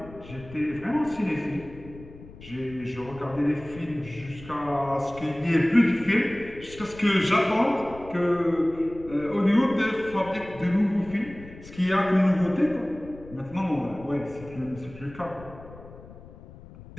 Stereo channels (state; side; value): noise; left; rumble, 18 dB below the sound